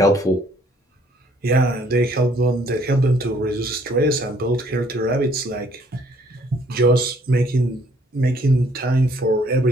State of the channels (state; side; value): normal; both; correlation 0.63